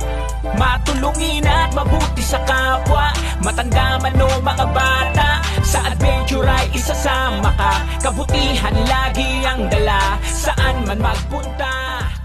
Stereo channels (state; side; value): identical; both; correlation 1.00